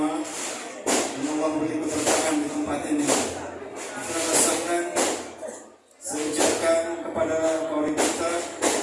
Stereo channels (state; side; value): identical; both; correlation 1.00